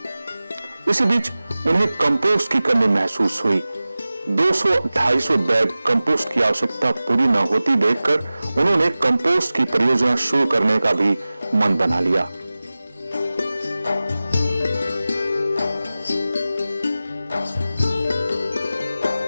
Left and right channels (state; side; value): inverted; both; correlation -0.97